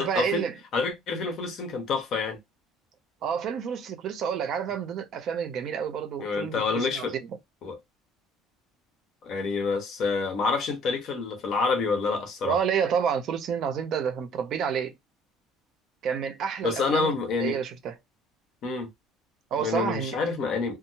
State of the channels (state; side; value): normal; both; correlation 0.55